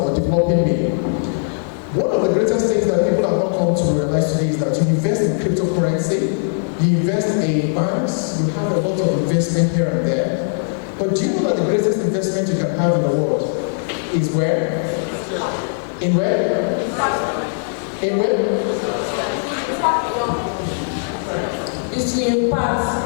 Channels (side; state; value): right; silent; 63 dB below the other